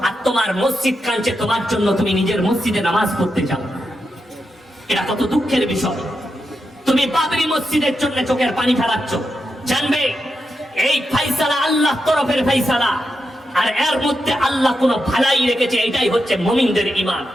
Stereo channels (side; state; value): both; normal; correlation 0.86